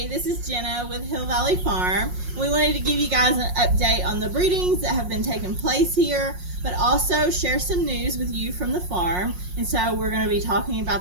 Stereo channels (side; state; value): left; late; 5.5 ms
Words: Hey, this is Jenna with Hill Valley Farm. We wanted to give you guys an update on the breedings that have been taking place here, but also share some news with you from the farm. And so we're going to be talking